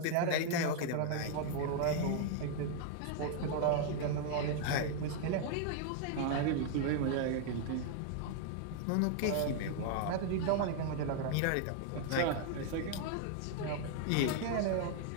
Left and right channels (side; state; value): both; different; correlation 0.00